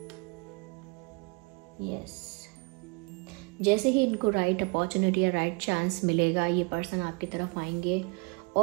यस, जैसे ही इनको राइट अपॉर्चुनिटी या राइट चांस मिलेगा ये पर्सन आपकी तरफ आएंगे।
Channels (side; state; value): left; quieter; 30.0 dB